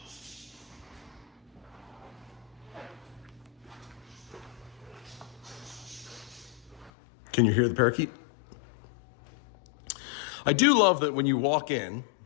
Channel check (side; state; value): right; drops out; at 6.9 s